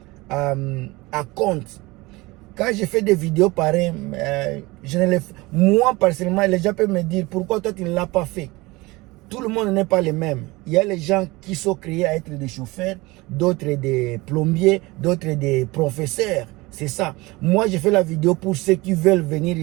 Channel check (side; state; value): left; quieter; 22.3 dB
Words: compte. Quand je fais des vidéos pareilles, moi personnellement, les gens peuvent me dire pourquoi toi tu ne l'as pas fait. Tout le monde n'est pas le même. Il y a les gens qui sont créés à être des chauffeurs, d'autres des plombiers, d'autres des professeurs. C'est ça. Moi, je fais la vidéo pour ceux qui veulent venir